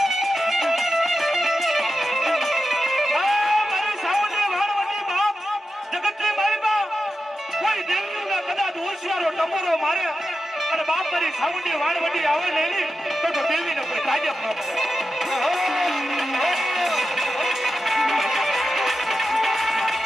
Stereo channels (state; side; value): normal; both; correlation 0.90